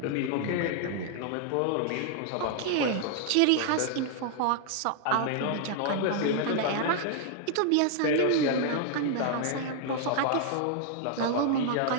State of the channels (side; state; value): both; different; correlation 0.00